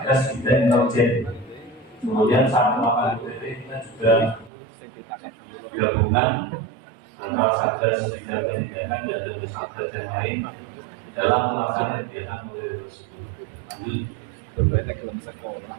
Bidang Intelijen. Kemudian saat melakukan UPT kita juga gabungan antara Satgas Bidang Penindakan dan dari Satgas yang lain dalam melaksanakan kegiatan OTT tersebut. Lanjut.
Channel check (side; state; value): left; drops out; at 4.5 s